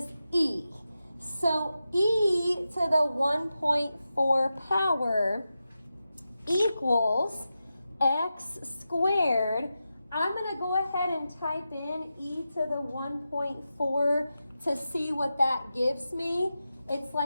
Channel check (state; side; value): inverted; both; correlation -0.91